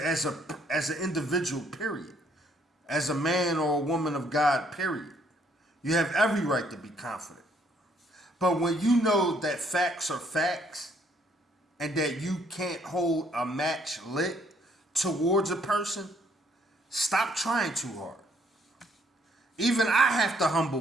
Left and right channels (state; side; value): normal; both; correlation 0.67